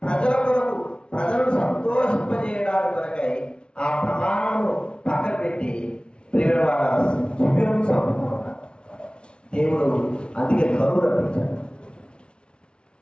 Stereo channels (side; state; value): right; late; 0.057 ms